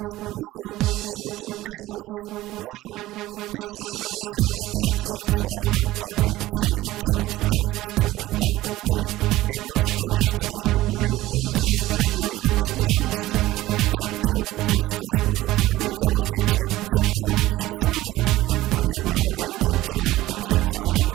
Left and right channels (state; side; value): quieter; left; 16.6 dB